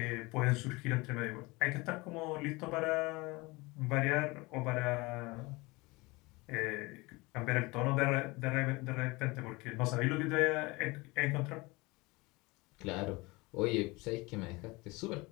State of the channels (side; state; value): right; quieter; 24.1 dB